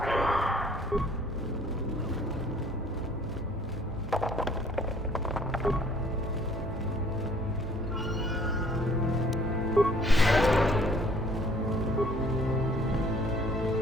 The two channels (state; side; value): normal; both; correlation 0.57